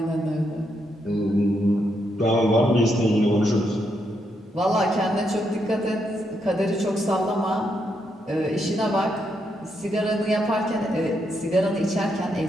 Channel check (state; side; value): normal; both; correlation 0.79